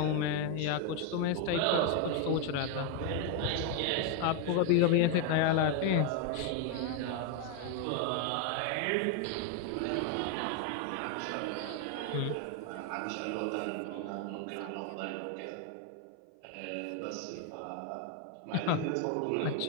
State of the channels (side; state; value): both; different; correlation 0.01